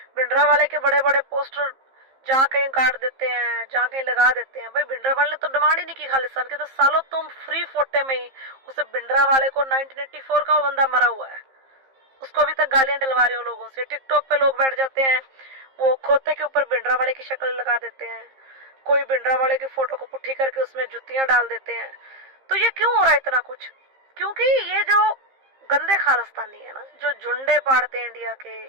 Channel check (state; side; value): late; left; 15 ms